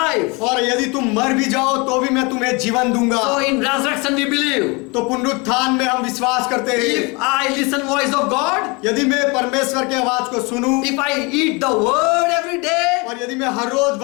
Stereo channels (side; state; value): right; quieter; 28.1 dB